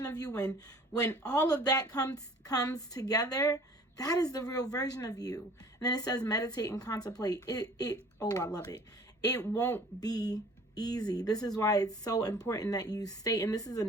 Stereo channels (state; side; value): normal; both; correlation 0.50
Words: of you. When all of that comes together, that is the real version of you. And then it says, meditate and contemplate. Oh, I love it. It won't be easy. This is why it's so important that you stay. And this is a